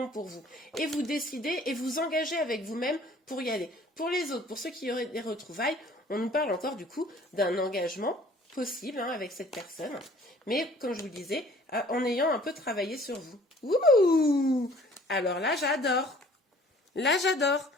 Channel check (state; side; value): normal; both; correlation 0.53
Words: pour vous. Et vous décidez et vous engagez avec vous-même pour y aller. Pour les autres, pour ceux qui auraient des retrouvailles, on nous parle encore du coup d'un engagement possible, hein, avec cette personne, mais comme je vous le disais, en ayant un peu travaillé sur vous. Ouh! Alors là, j'adore. Là, j'adore.